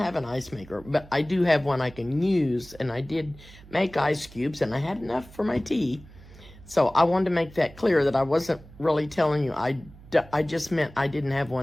an ice maker, but I do have one I can use, and I did make ice cubes, and I had enough for my tea. So I wanted to make that clear, that I wasn't really telling you. I just meant I didn't have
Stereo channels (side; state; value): right; noise; hum, 20 dB below the sound